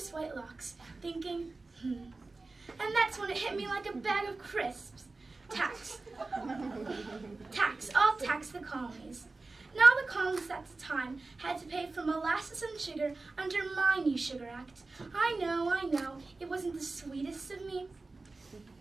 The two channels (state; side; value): quieter; left; 3.5 dB